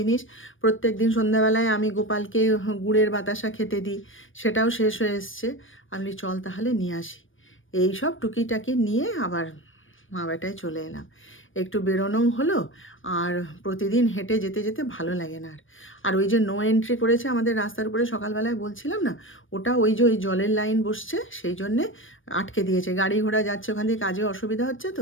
প্রত্যেক দিন সন্ধ্যাবেলায় আমি গোপালকে গুড়ের বাতাসা খেতে দিই, সেটাও শেষ হয়ে এসছে। আমি চল তাহলে নিয়ে আসি। এই সব টুকিটাকি নিয়ে আবার মা বেটায় চলে এলাম। একটু বেরোনোও হলো, আর প্রতিদিন হেঁটে যেতে যেতে ভালো লাগে না আর। আর ওই যে নো এন্ট্রি করেছে আমাদের রাস্তার উপরে, সকালবেলায় বলছিলাম না, ওটা ওই যে ওই জলের লাইন বসছে সেই জন্যে আটকে দিয়েছে। গাড়ি ঘোড়া যাচ্ছে ওখান দিয়ে, কাজে অসুবিধা হচ্ছে,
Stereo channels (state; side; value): late; right; 0.57 ms